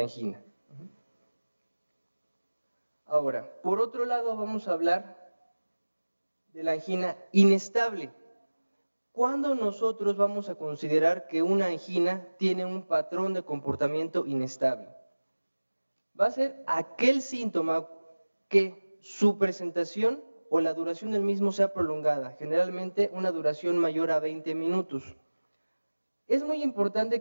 angina. Ahora, por otro lado vamos a hablar de la angina inestable. ¿Cuándo nosotros vamos a considerar que una angina tiene un patrón de comportamiento inestable? Va a ser aquel síntoma que su presentación o la duración del mismo sea prolongada, generalmente una duración mayor a 20 minutos. Es muy importante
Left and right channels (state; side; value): inverted; both; correlation -1.00